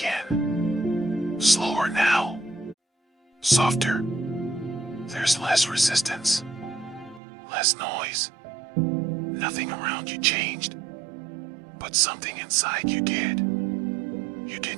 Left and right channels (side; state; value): left; drops out; at 7.2 s